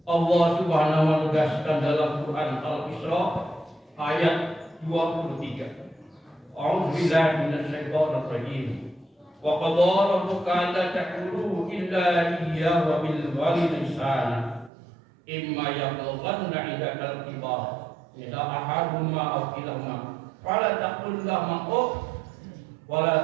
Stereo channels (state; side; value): drops out; left; at 14.7 s